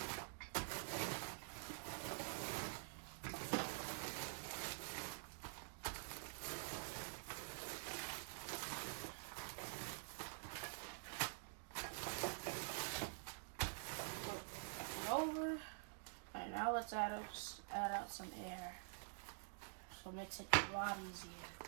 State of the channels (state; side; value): silent; left; digital silence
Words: Over. Alright, now let's add out some air. So it makes it a lot easier.